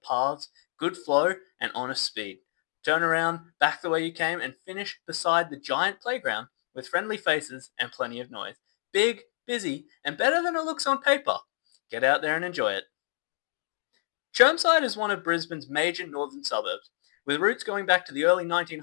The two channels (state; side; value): silent; right; digital silence